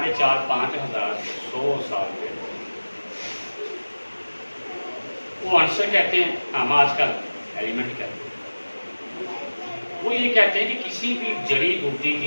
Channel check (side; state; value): both; inverted; correlation -1.00